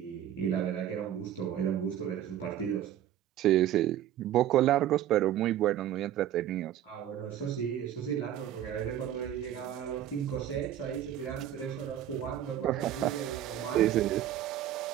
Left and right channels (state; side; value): quieter; left; 11.4 dB